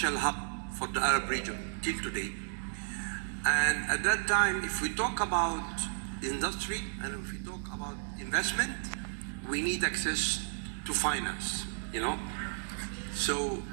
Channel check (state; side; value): silent; left; 56 dB below the other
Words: hub for the Arab region till today. And at that time, if we talk about industry and if we talk about investment, we need access to finance, So